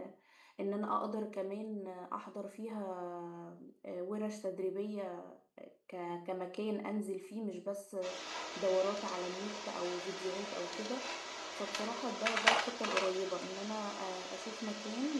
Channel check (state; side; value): identical; both; correlation 1.00